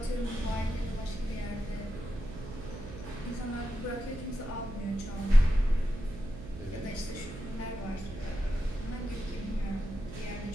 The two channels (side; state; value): right; noise; hum, 12 dB below the sound